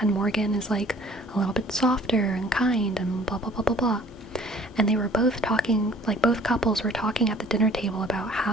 and Morgan is like a little bit softer and kind and blah blah blah blah blah. And they were both talking, like both couples were talking at the dinner table about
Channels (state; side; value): normal; both; correlation 0.53